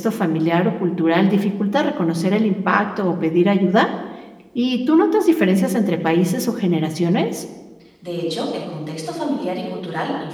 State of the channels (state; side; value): identical; both; correlation 1.00